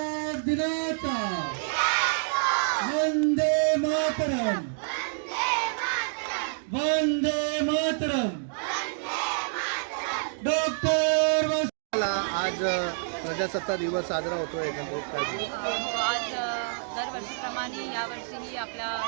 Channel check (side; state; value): left; silent; digital silence